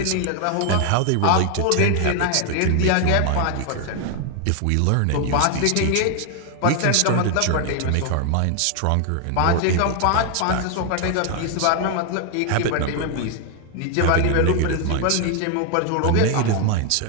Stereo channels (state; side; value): different; both; correlation 0.01